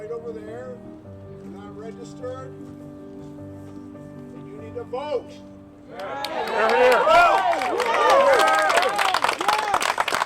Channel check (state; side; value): identical; both; correlation 1.00